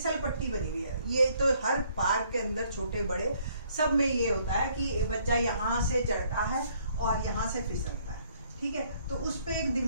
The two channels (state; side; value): inverted; both; correlation -0.65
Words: पट्टी बनी हुई है। ये तो हर पार्क के अंदर छोटे बड़े सब में ये होता है कि बच्चा यहाँ से चढ़ता है और यहाँ से फिसलता है। ठीक है, तो उस पे एक